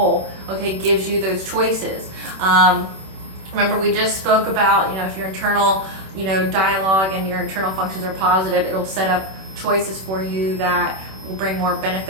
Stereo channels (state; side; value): late; left; 26 ms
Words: okay? It gives you those choices. Remember, we just spoke about, if your internal, dialogue and your internal functions are positive, it'll set up choices for you that will bring more